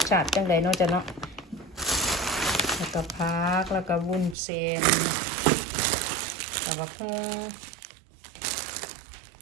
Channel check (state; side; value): drops out; left; at 4.4 s